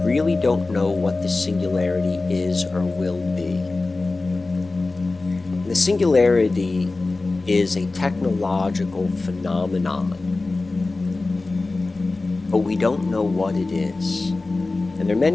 really don't know what the singularity is or will be. The singularity is a technological phenomenon, but we don't know what it is. And there are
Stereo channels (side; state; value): right; quieter; 3.4 dB